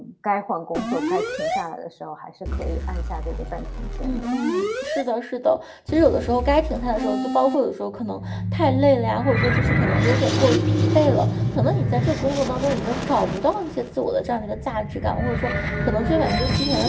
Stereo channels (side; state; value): both; identical; correlation 1.00